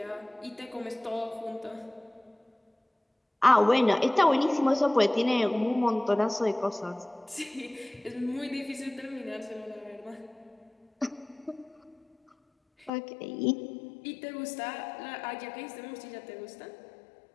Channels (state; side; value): drops out; right; at 12.9 s